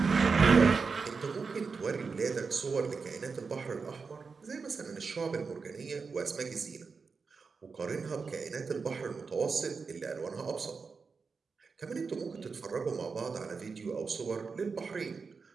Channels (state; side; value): quieter; left; 5.0 dB